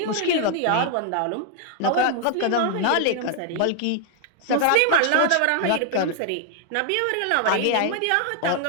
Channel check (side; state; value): both; different; correlation 0.00